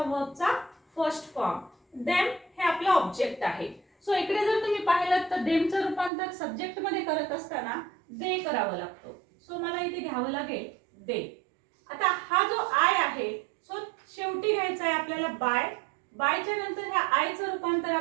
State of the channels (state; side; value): drops out; left; at 6.1 s